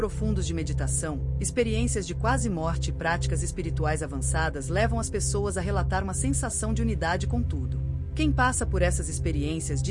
de meditação, experiências de quase morte e práticas espirituais avançadas levam as pessoas a relatar uma sensação de unidade com tudo. Quem passa por essas experiências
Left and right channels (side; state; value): both; identical; correlation 1.00